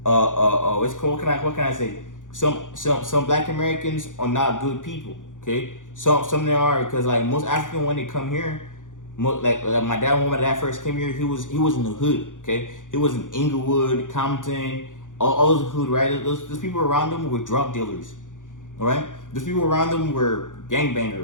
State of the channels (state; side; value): late; right; 0.87 ms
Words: what's called, what can I say? Some Black Americans are not good people, okay? Some they are because like most African when they come here, like my dad when my dad first came here, he was in the hood, okay? He was in Inglewood, Compton, all those hood, right? Those people around them were drug dealers, all right? Those people around them were